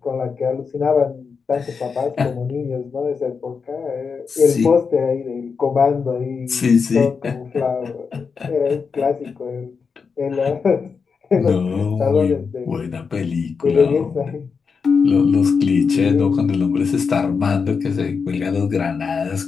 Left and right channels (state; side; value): quieter; right; 5.5 dB